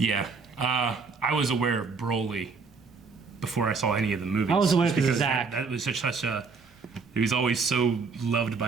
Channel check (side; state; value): left; quieter; 4.8 dB